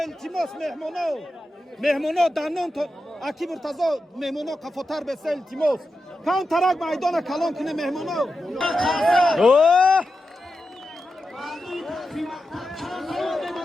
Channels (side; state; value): both; normal; correlation 0.90